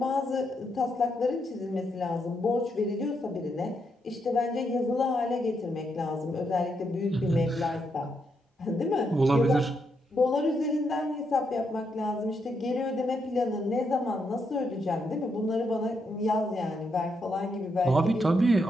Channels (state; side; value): normal; both; correlation 0.80